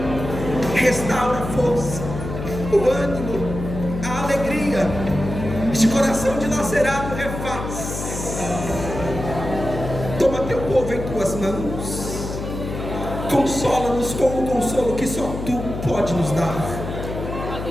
Restaura a força, o ânimo, a alegria. Este coração dilacerado refaz. Toma Teu povo em Tuas mãos, consola-nos com o consolo que só Tu pode nos dar.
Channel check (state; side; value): noise; left; hum, 7 dB below the sound